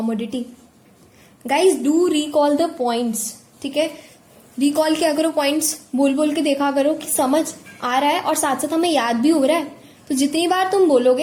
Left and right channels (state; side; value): identical; both; correlation 1.00